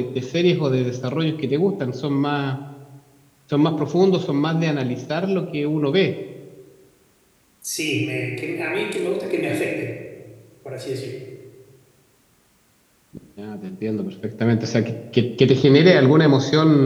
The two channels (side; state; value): both; identical; correlation 1.00